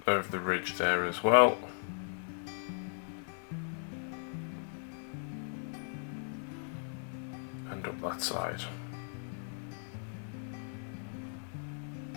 of the ridge there as well. And up that side.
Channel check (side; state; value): right; silent; digital silence